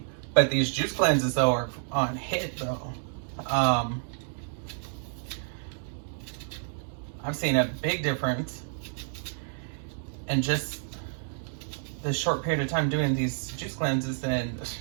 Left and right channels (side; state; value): left; silent; digital silence